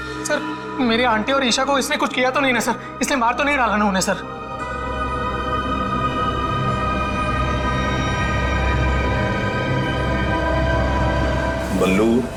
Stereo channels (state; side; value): identical; both; correlation 1.00